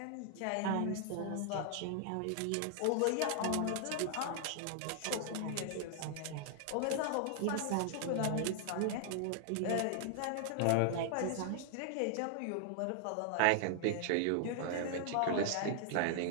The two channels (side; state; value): both; different; correlation 0.00